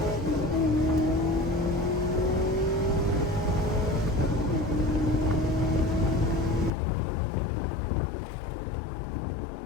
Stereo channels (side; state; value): right; drops out; at 6.7 s